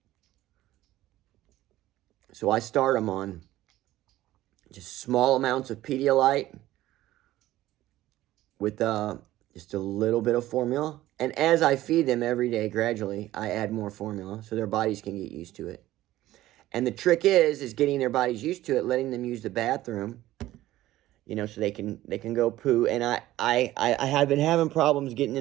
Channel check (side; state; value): left; quieter; 15.3 dB